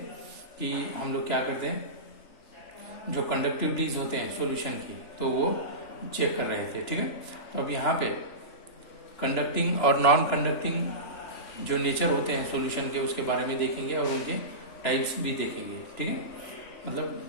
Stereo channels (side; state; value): right; late; 3.0 ms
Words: कि हम लोग क्या करते हैं, जो कंडक्टिविटीज होते हैं सॉल्यूशन की, तो वो चेक कर रहे थे। ठीक है, तो अब यहाँ पे कंडक्टिंग और नॉन कंडक्टिंग जो नेचर होते हैं सॉल्यूशन के, उसके बारे में देखेंगे और उनके टाइप्स भी देखेंगे। ठीक है,